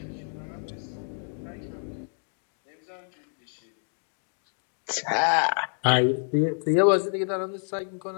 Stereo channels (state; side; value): silent; right; 59 dB below the other